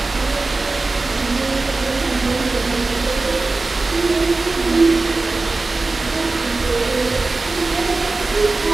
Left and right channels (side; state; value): left; quieter; 3.5 dB